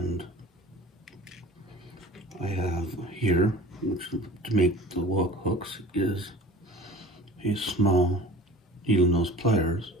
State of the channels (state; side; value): normal; both; correlation 0.41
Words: I have here, which to make the hooks, is a small needle nose pliers